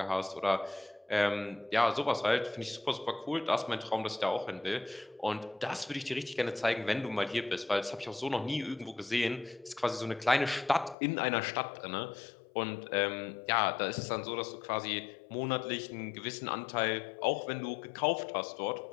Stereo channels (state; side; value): drops out; right; at 11.0 s